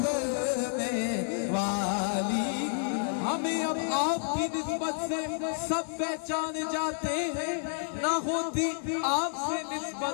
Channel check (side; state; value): right; silent; digital silence